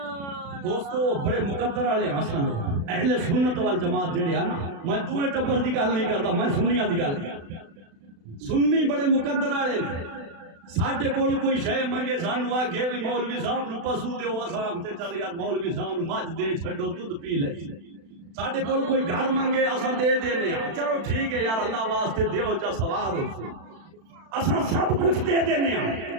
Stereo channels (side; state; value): left; late; 36 ms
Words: دوستو بڑے مقدر والے حسن اہل سنت والجماعت جڑے ہیں نا، میں دوے ٹبر دی گل نہیں کرتا، میں سنیاں دی گل کرتا۔ سنی بڑے مقدر والے نے، ساڈے کول کوئی شے منگے سانو آکھے بھی مولوی صاحب نو پسو دیو، اساں آکھتے چل یار مولوی صاحب نو مجھ دے چھڈو دودھ پی لے۔ ساڈے کول کوئی گھر منگے اساں دے دینے ہاں، چلو ٹھیک ہے یار اللہ واسطے دیو جا ثواب ہو سی، اساں سب کچھ دے دینے ہاں،